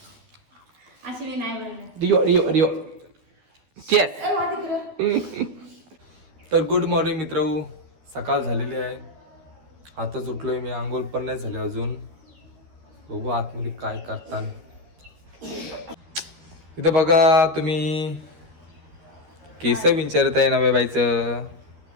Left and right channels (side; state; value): left; late; 13 ms